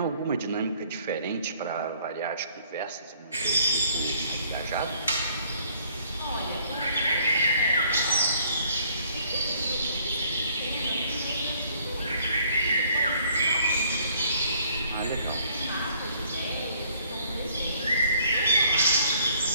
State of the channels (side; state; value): both; inverted; correlation -0.61